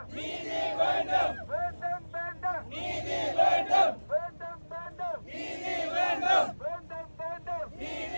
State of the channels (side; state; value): both; inverted; correlation -1.00